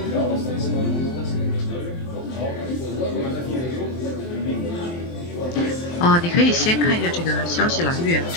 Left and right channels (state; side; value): late; right; 23 ms